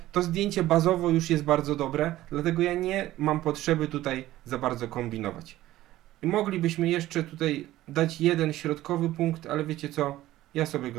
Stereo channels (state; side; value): quieter; left; 15.3 dB